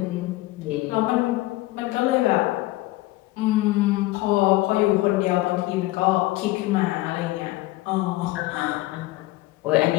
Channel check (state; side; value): quieter; right; 18.7 dB